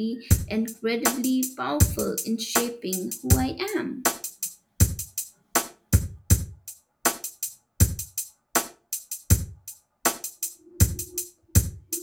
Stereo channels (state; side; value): identical; both; correlation 1.00